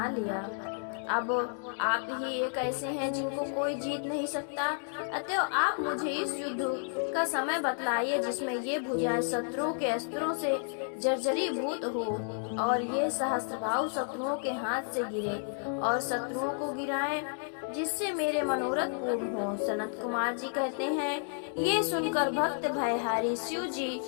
लिया। अब आप ही एक ऐसे हैं जिनको कोई जीत नहीं सकता। अतः आप मुझे इस युद्ध का समय बतलाइए जिसमें ये भुजाएं शत्रुओं के अस्त्रों से जर्जरीभूत हो और ये सहस्त्रभाव शत्रुओं के हाथ से गिरे और शत्रुओं को गिराएं, जिससे मेरे मनोरथ पूर्ण हो। सनत कुमार जी कहते हैं, ये सुनकर भक्त भयहारी शिव जी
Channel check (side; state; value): right; silent; 57 dB below the other